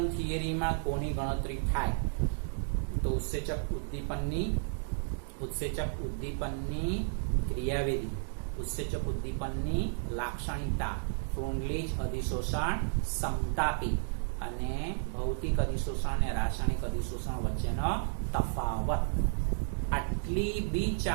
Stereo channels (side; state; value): left; silent; digital silence